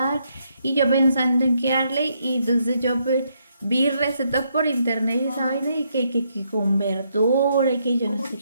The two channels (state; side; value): inverted; both; correlation -0.75